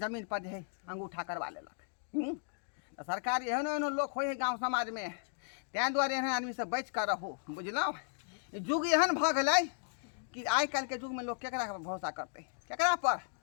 जमीन पर जे अंगूठा करवा लेलक तो सरकार एहनो एहनो लोग हो गाँव समाज में तैं दुआरे एहन आदमी से बच कर रहो बुझलौ युग एहन भ गेलै कि आइ काल्हि के युग में लोग केकरा पर भरोसा करते केकरा पर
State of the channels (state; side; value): silent; right; digital silence